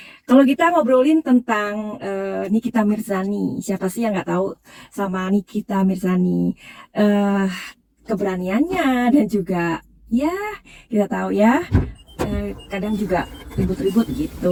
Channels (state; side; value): identical; both; correlation 1.00